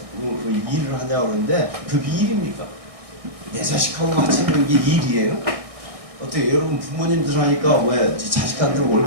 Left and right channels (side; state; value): left; late; 1.6 ms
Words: 일을 하냐 그러는데 그게 일입니까? 내 자식하고 같이 있는 게 일이에요? 어떻게 여러분 부모님들 하니까 왜 자식한테